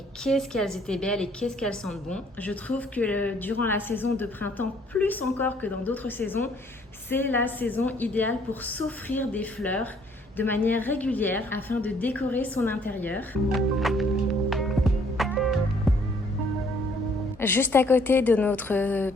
qu'est-ce qu'elles étaient belles et qu'est-ce qu'elles sentent bon. Je trouve que durant la saison de printemps, plus encore que dans d'autres saisons, c'est la saison idéale pour s'offrir des fleurs de manière régulière afin de décorer son intérieur. Juste à côté de notre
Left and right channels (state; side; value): normal; both; correlation 0.62